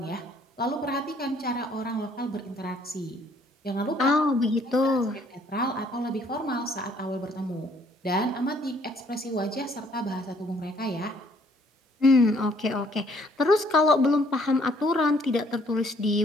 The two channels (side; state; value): both; normal; correlation 0.63